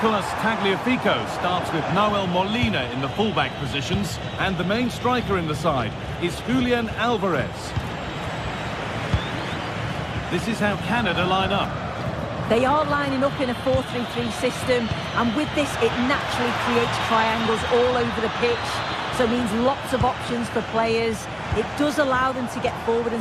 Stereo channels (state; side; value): identical; both; correlation 1.00